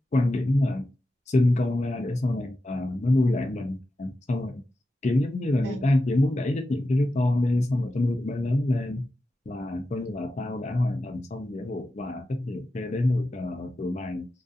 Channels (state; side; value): normal; both; correlation 0.91